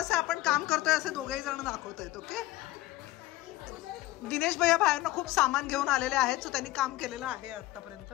आपण काम करतोय असे दोघेही जण दाखवतायत. ओके, दिनेश भैया बाहेरनं खूप सामान घेऊन आलेले आहेत, सो त्यांनी काम केलेलं आहे आतापर्यंत.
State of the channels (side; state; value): right; quieter; 17.5 dB